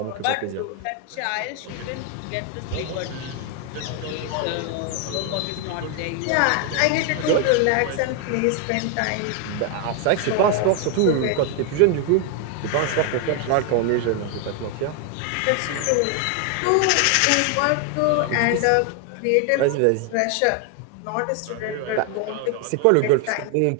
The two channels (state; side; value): different; both; correlation 0.01